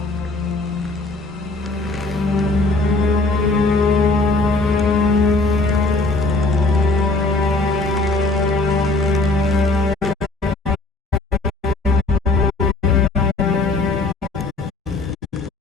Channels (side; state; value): right; quieter; 3.2 dB